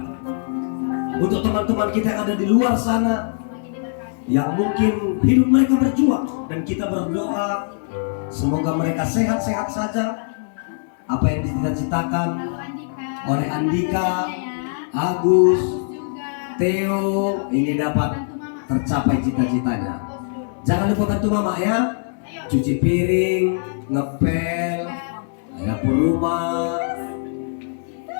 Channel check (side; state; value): right; silent; digital silence